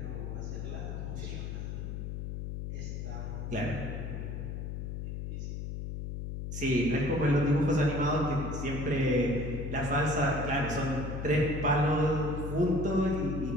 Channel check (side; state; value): left; noise; hum, 5 dB below the sound